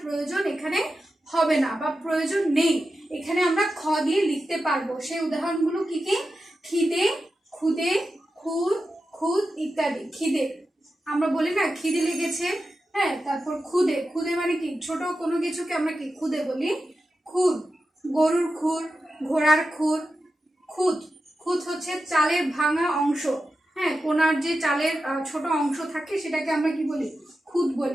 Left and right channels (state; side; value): normal; both; correlation 0.91